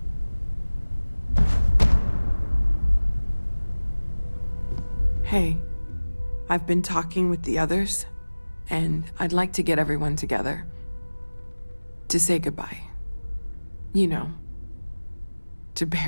Hey, I've been talking with the others, and I'd like to get everyone together to say goodbye. You know, to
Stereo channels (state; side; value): inverted; both; correlation -1.00